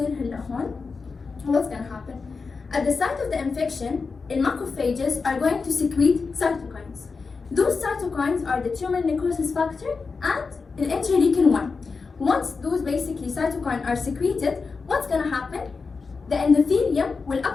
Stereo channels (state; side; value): quieter; right; 4.7 dB